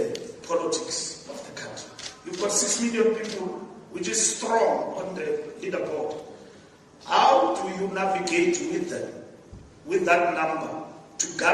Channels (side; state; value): both; identical; correlation 1.00